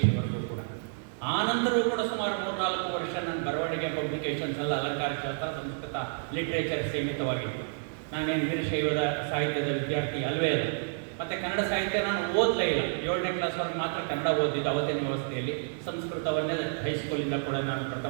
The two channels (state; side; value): silent; left; 58 dB below the other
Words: ಕೂಡ. ಆ ನಂತರವೂ ಕೂಡ ಸುಮಾರು 3-4 ವರ್ಷ ನನ್ನ ಬರವಣಿಗೆ ಪಬ್ಲಿಕೇಶನ್ಸ್ ಎಲ್ಲ ಅಲಂಕಾರ ಶಾಸ್ತ್ರ, ಸಂಸ್ಕೃತ, ಲಿಟ್ರೇಚರ್ ಸೀಮಿತವಾಗಿತ್ತು. ನಾನೇನು ವೀರಶೈವದ ಸಾಹಿತ್ಯದ ವಿದ್ಯಾರ್ಥಿ ಅಲ್ವೇ ಇಲ್ಲ. ಮತ್ತು ಕನ್ನಡ ಸಾಹಿತ್ಯ ನಾನು ಓದಲೇ ಇಲ್ಲ. 7ನೇ ಕ್ಲಾಸ್ವರೆಗೆ ಮಾತ್ರ ಕನ್ನಡ ಓದಿದ್ದು ಅವತ್ತಿನ ವ್ಯವಸ್ಥೆಯಲ್ಲಿ. ಸಂಸ್ಕೃತವನ್ನೇ ಹೈಸ್ಕೂಲಿಂದ ಕೂಡ ನಾನು